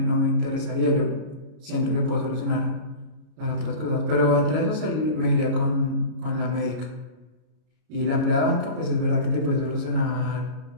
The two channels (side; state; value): left; late; 33 ms